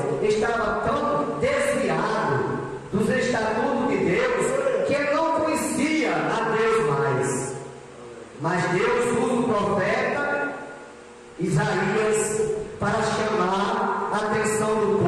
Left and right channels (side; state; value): both; identical; correlation 1.00